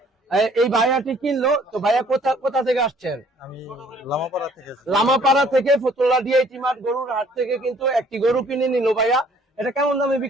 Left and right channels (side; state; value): both; normal; correlation 0.58